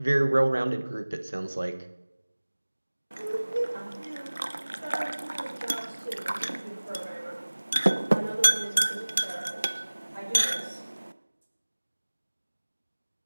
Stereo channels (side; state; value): both; inverted; correlation -1.00